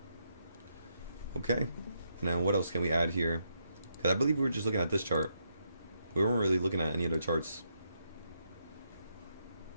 Okay, and then what else can we add here? Because I believe we were just looking at this chart. We weren't really looking at any other charts.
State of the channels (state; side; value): inverted; both; correlation -0.79